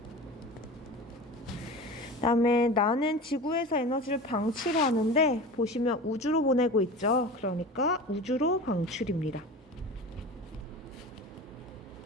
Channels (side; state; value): both; normal; correlation 0.33